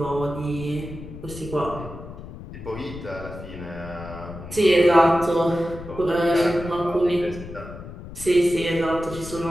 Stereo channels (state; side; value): noise; left; rumble, 13 dB below the sound